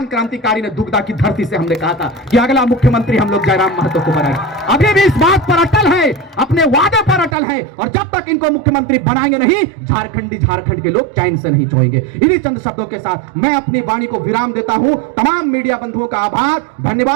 क्रांतिकारी ने दुगदा की धरती से हमने कहा था कि अगला मुख्यमंत्री हम लोग जयराम महतो को बनाएंगे। अभी भी इस बात पर अटल है, अपने वादे पर अटल है, और जब तक इनको मुख्यमंत्री बनाएंगे नहीं, झारखंड के लोग चैन से नहीं सोएंगे। इन्हीं चंद शब्दों के साथ मैं अपनी वाणी को विराम देता हूं। तमाम मीडिया बंधुओं का आभार,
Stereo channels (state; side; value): drops out; left; at 7.4 s